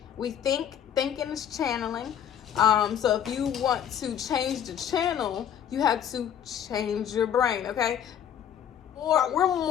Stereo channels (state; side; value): quieter; right; 9.3 dB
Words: we think, thinking is channeling. So if you want to change the channel, you have to change your brain, okay? Or we're